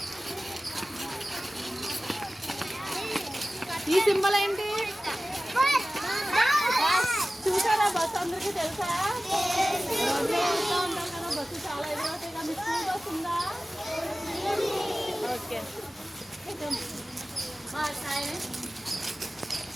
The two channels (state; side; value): normal; both; correlation 0.96